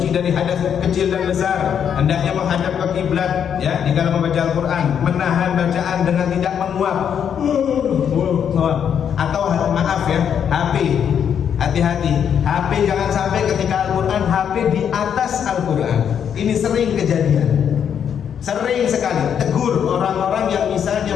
dari hadas kecil dan besar, hendaknya menghadap ke kiblat ya di dalam membaca Al-Quran, menahan bacaan dengan tidak menguap atau maaf ya, HP. Hati-hati, HP jangan sampai ketika Al-Quran, HP di atas Al-Quran. Ini sering kejadian, sering sekali. Tegur orang-orang yang misalnya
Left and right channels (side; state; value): right; quieter; 8.3 dB